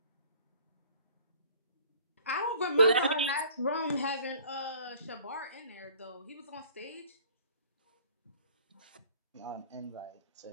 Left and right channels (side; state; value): both; inverted; correlation -0.51